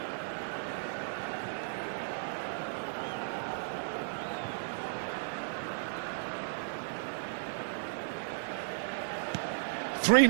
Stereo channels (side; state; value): left; silent; digital silence